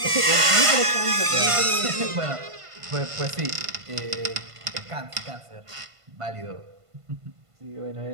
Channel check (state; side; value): late; left; 1.5 ms